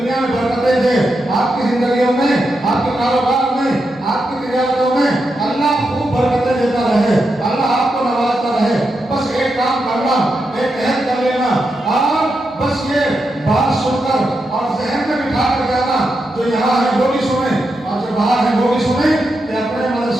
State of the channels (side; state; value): both; normal; correlation 0.86